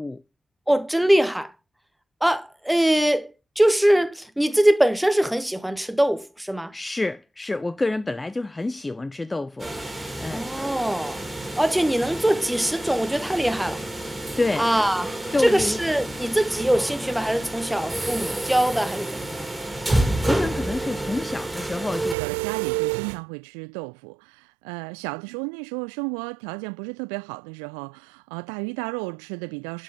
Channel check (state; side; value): drops out; left; at 22.2 s